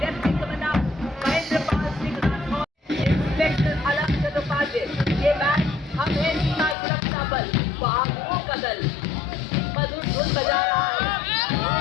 Lieutenant commandant Mahendra Pal Singh Rathore, inspector अलग चट्टोपाध्याय, ये बैंड हम है सीमा सुरक्षा बल, बहादुरों का दल, मधुर धुन बजा रहा है।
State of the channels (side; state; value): right; drops out; at 6.8 s